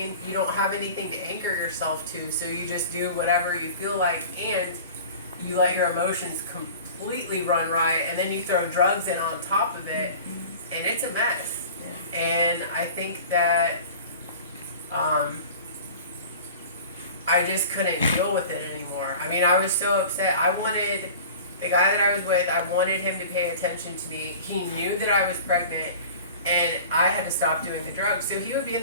You don't have anything to anchor yourself to, so you just do whatever you feel like, and you let your emotions completely run riot, and then you throw drugs in on top of it, and it's a mess. Yeah. And I think that I just couldn't deal with it anymore. I mean, I was so upset. I wanted the guy that I was with, I wanted him to pay attention to me. He knew that I was pregnant, and I had to stop doing the drugs. So he would be in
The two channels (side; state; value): both; inverted; correlation -0.40